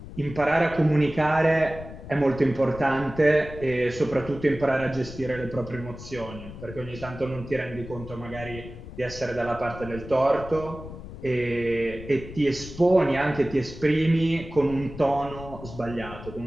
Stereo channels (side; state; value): left; noise; rumble, 13 dB below the sound